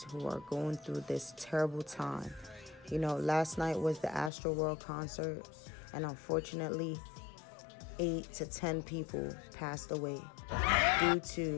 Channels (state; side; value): drops out; right; at 4.3 s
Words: who are going through this terrible time. You know, last night was the Astro World concert, and unfortunately, 8 to 10 people passed away due